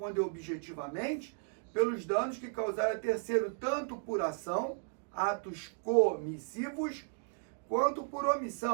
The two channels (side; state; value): left; silent; 55 dB below the other